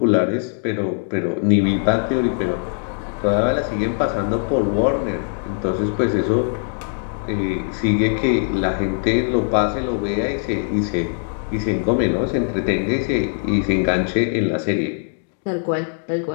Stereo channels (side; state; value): right; silent; digital silence